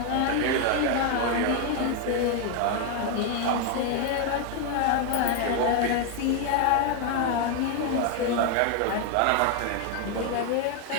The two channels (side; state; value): both; different; correlation 0.01